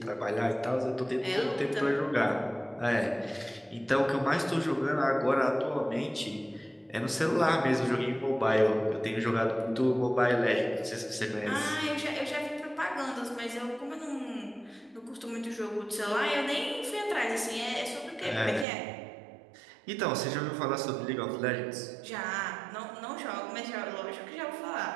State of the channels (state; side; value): drops out; left; at 18.7 s